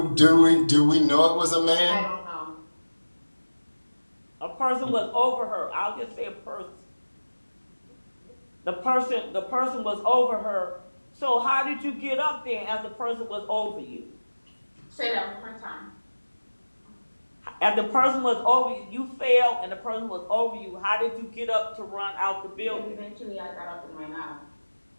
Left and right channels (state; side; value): inverted; both; correlation -1.00